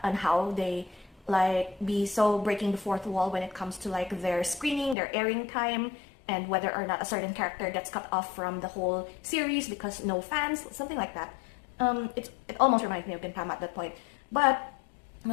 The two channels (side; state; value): right; drops out; at 5.0 s